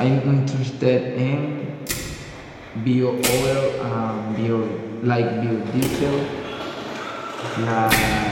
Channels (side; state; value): both; identical; correlation 1.00